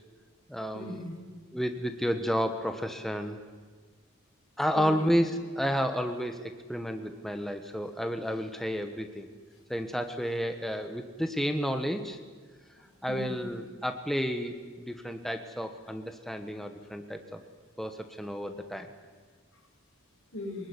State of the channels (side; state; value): both; normal; correlation 0.87